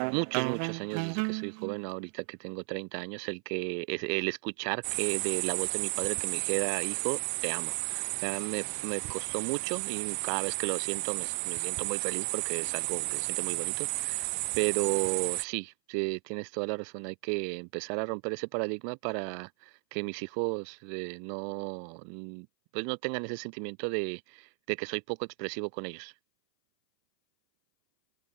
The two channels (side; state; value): left; silent; 55 dB below the other